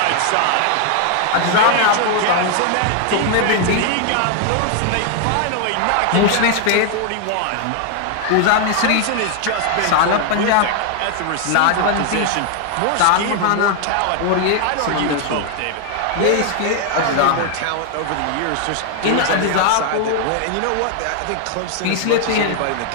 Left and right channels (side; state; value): both; different; correlation 0.00